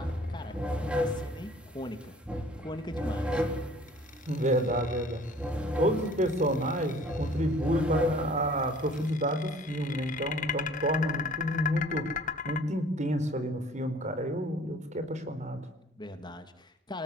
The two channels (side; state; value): both; normal; correlation 0.52